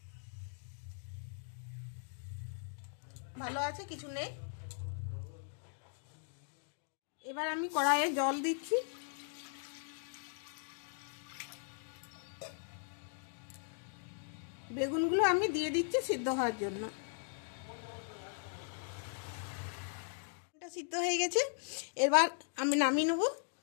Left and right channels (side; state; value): right; silent; digital silence